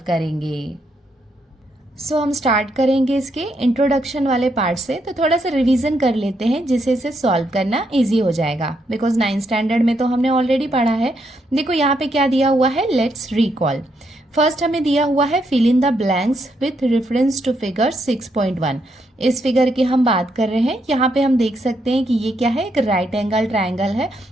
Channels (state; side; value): normal; both; correlation 0.77